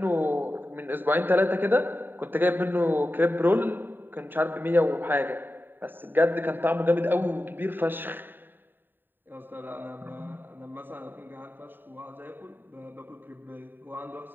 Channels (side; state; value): left; late; 0.094 ms